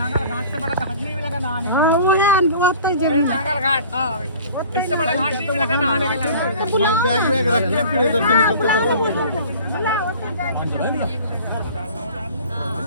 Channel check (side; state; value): both; inverted; correlation -0.45